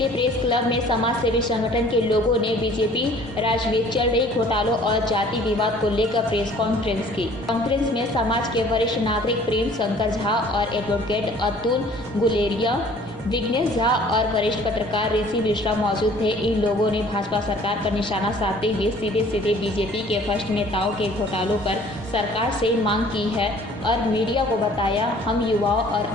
प्रेस क्लब में समाज सेवी संगठन के लोगों ने बीजेपी राज्य में चल रही घोटालों और जाति विवाद को लेकर प्रेस कॉन्फ्रेंस की। कॉन्फ्रेंस में समाज के वरिष्ठ नागरिक प्रेम शंकर झा और एडवोकेट अतुल गुलेरिया, विघ्नेश झा और वरिष्ठ पत्रकार ऋषि मिश्रा मौजूद थे। इन लोगों ने भाजपा सरकार पर निशाना साधते हुए सीधे बीजेपी के भ्रष्ट नेताओं के घोटालों पर सरकार से मांग की है और मीडिया को बताया, हम युवाओं और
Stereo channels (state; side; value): normal; both; correlation 0.53